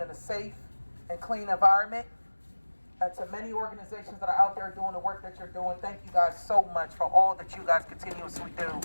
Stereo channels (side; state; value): both; inverted; correlation -1.00